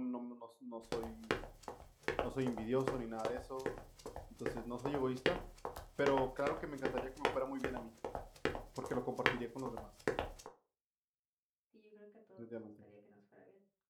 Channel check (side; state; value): both; identical; correlation 1.00